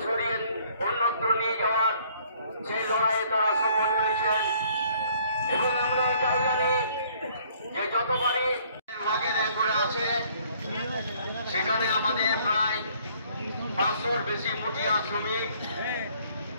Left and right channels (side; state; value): both; inverted; correlation -0.61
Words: সরিয়ে অন্যত্র নিয়ে যাওয়ার সেই লড়াইয়ে তারা সফল হয়েছেন। এবং আমরা এটাও জানি যে যতবারই ওয়াগনে করে আছে সেখানে আমাদের প্রায় 500-র বেশি মুঠিয়া শ্রমিক